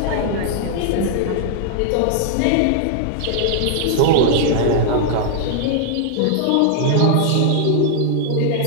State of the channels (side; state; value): both; different; correlation -0.01